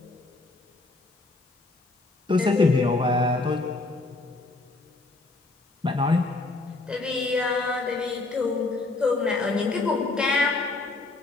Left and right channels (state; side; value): quieter; right; 3.2 dB